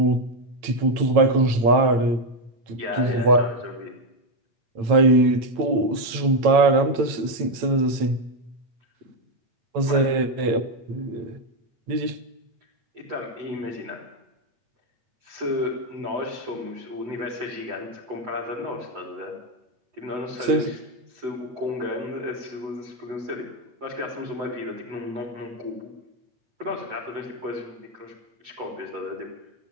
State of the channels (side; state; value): left; late; 8.9 ms